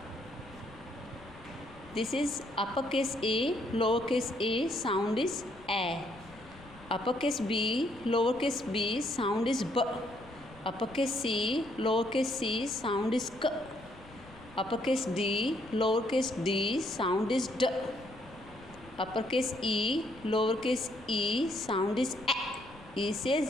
This is uppercase A, lowercase a, sound is A. Uppercase B, lowercase b, sound is B. Uppercase C, lowercase c, sound is K. Uppercase D, lowercase d, sound is D. Uppercase E, lowercase e, sound is A. E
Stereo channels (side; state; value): left; noise; rumble, 21 dB below the sound